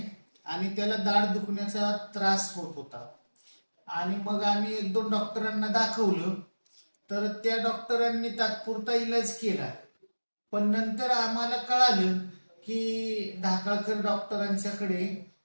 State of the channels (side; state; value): both; inverted; correlation -1.00